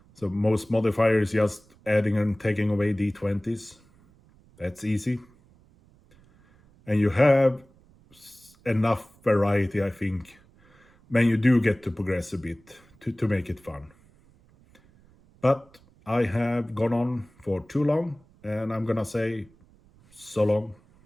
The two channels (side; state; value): right; noise; rumble, 29 dB below the sound